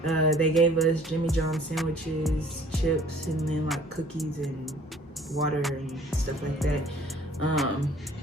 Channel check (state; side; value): normal; both; correlation 0.54